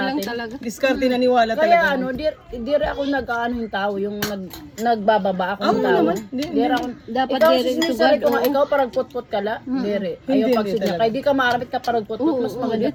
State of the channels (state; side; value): identical; both; correlation 1.00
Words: natin? talaga. diskarte naniwala Kaya talaga. ano, dire ako nag-ano yung tao, yung nagbababa ako ng Oo tao. naman. Di- Dire ako. Dapat Ikaw dire sinisari to ko God, nga, oo. ikaw parang put-put ka la. Dire. Hindi, Ayaw hindi pagsidya. talaga. Kaya di ka maarapit ka parang put-put, mas maganda